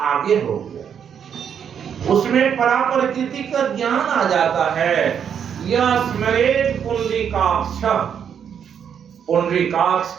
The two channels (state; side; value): quieter; left; 8.0 dB